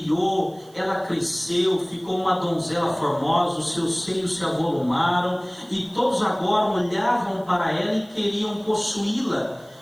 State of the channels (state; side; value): noise; right; hiss, 28 dB below the sound